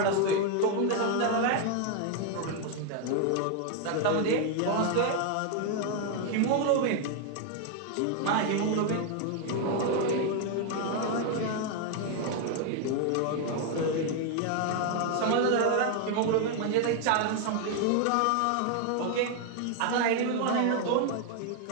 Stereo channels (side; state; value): both; different; correlation 0.00